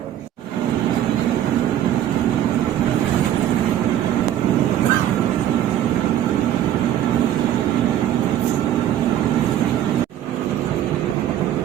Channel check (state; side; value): quieter; left; 11.5 dB